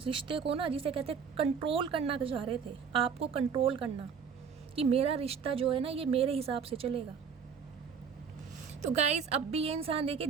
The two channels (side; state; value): left; quieter; 6.5 dB